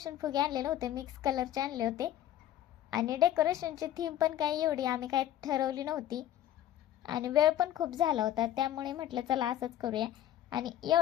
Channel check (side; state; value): right; quieter; 12.0 dB